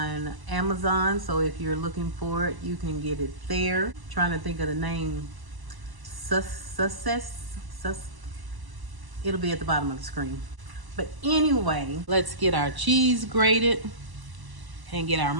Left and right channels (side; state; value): left; late; 1.0 ms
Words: Amazon, so if you're looking for it, you can get it there. Trying to think of the name. It'll be at the bottom of the screen. But anyway, let's get our cheese grated and get our